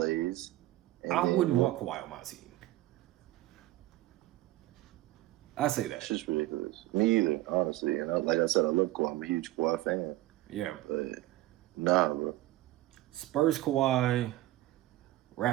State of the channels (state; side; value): quieter; left; 16.7 dB